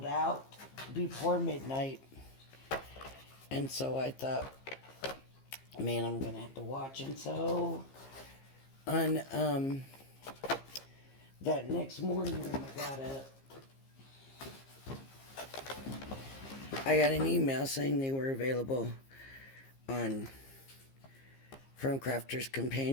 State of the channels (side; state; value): right; late; 15 ms